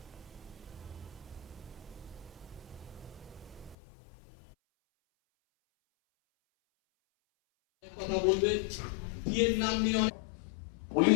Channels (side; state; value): right; drops out; at 3.8 s